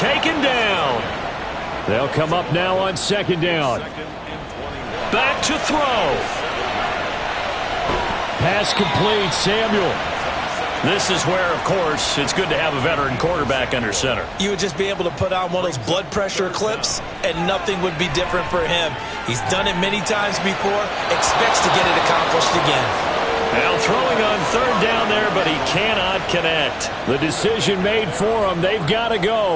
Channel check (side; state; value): both; identical; correlation 1.00